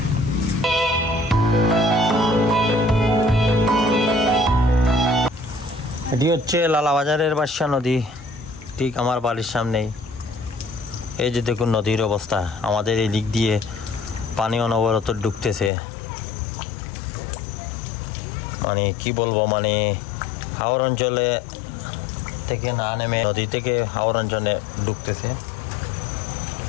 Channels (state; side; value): drops out; right; at 15.7 s